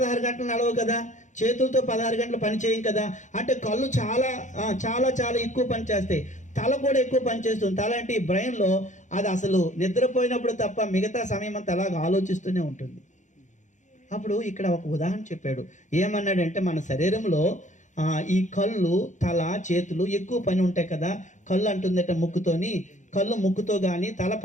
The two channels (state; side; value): late; right; 0.35 ms